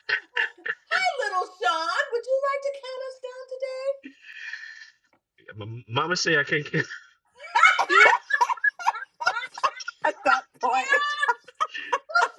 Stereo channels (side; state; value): both; identical; correlation 1.00